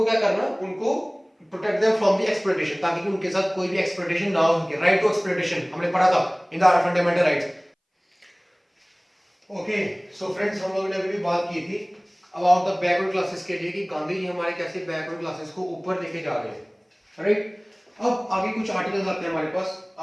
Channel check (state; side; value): identical; both; correlation 1.00